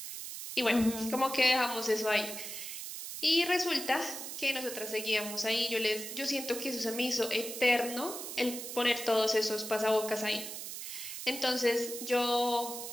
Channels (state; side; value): noise; right; hiss, 8 dB below the sound